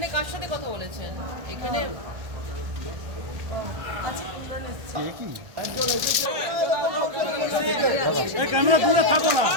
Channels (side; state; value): left; late; 1.2 ms